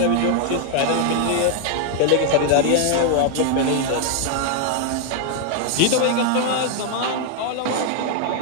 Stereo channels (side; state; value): both; different; correlation 0.00